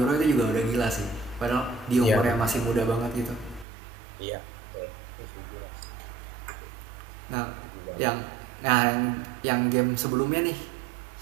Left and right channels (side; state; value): left; drops out; at 3.7 s